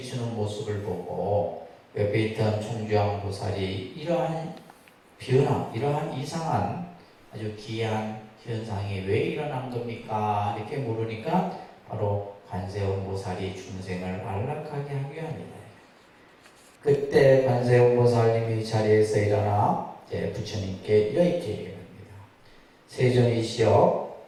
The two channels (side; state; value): both; identical; correlation 1.00